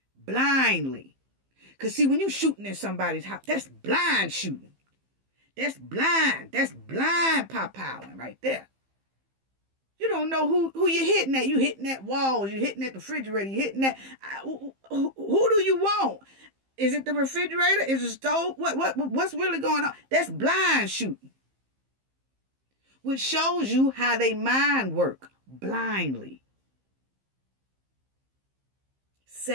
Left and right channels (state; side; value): late; left; 15 ms